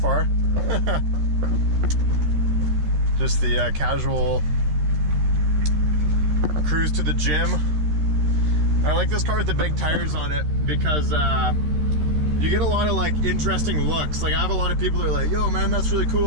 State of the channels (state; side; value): late; left; 13 ms